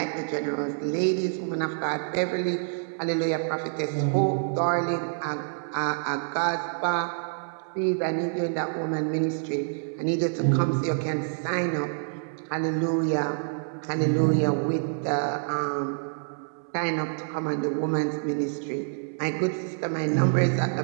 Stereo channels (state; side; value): silent; left; 60 dB below the other